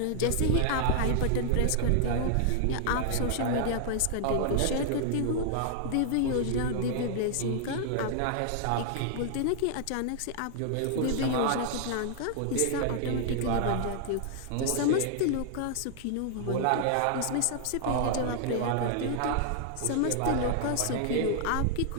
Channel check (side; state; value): both; different; correlation -0.01